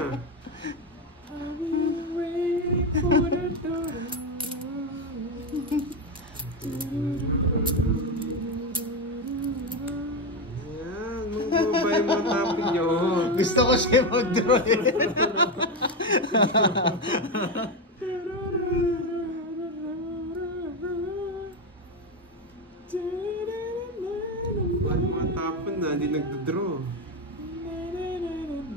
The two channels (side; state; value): both; normal; correlation 0.12